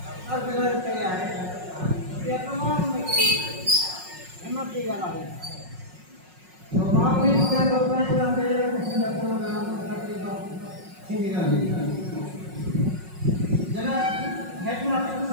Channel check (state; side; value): late; left; 5.5 ms